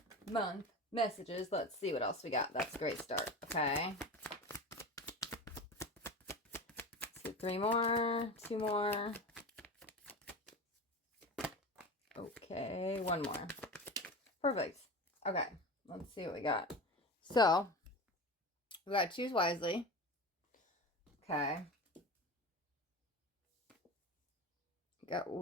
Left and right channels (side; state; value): both; normal; correlation 0.29